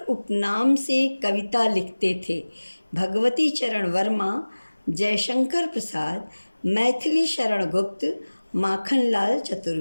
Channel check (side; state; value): both; inverted; correlation -1.00